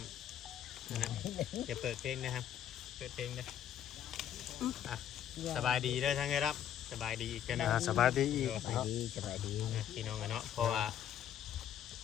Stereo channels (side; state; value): right; quieter; 10.2 dB